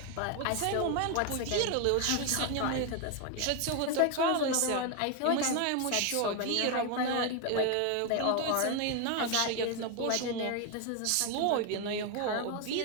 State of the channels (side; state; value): both; different; correlation 0.01